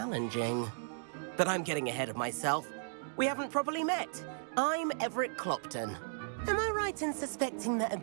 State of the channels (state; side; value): silent; left; digital silence